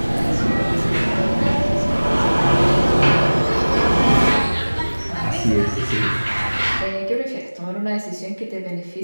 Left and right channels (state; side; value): inverted; both; correlation -1.00